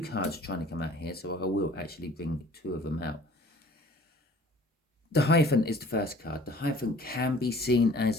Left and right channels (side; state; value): both; normal; correlation 0.52